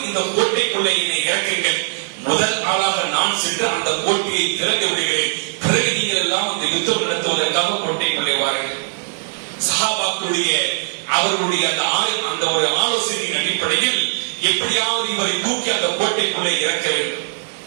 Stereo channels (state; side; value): silent; left; digital silence